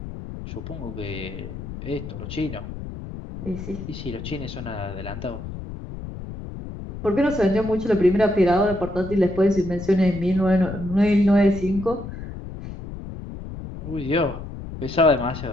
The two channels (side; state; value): left; noise; rumble, 10 dB below the sound